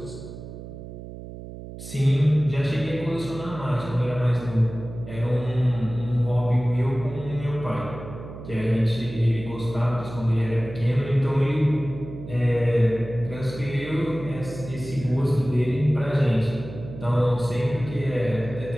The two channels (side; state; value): right; noise; hum, 12 dB below the sound